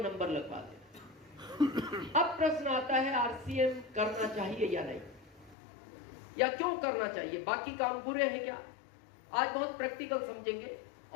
नंबर लगवा दे। अब प्रश्न आता है, आरसीएम करना चाहिए या नहीं, या क्यों करना चाहिए, बाकी काम बुरे हैं क्या? आज बहुत प्रैक्टिकल समझेंगे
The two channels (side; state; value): right; drops out; at 5.6 s